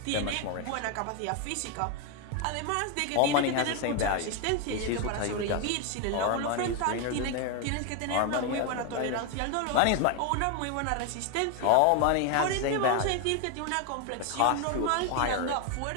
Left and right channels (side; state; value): both; different; correlation 0.01